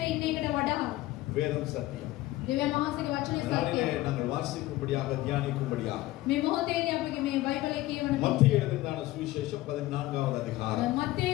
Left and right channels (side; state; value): right; quieter; 17.3 dB